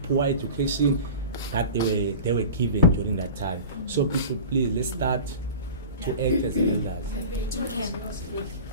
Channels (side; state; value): both; inverted; correlation -0.36